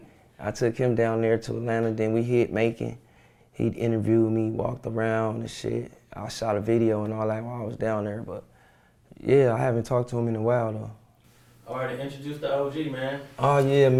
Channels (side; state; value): both; identical; correlation 1.00